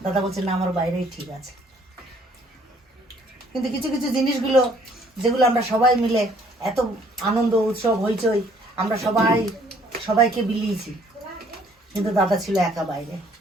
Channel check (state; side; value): normal; both; correlation 0.61